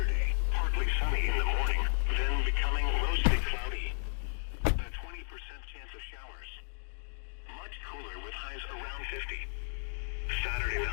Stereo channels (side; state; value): right; silent; digital silence